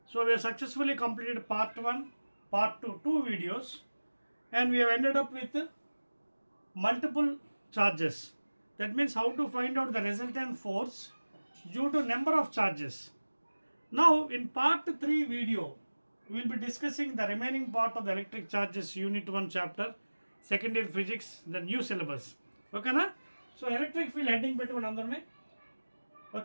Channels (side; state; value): both; inverted; correlation -1.00